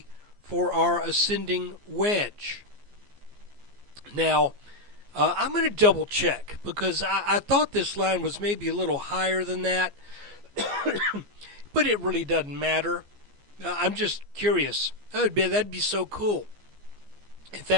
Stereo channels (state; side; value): late; left; 14 ms